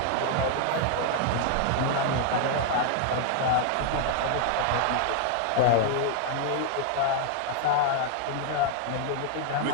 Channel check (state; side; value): different; both; correlation 0.00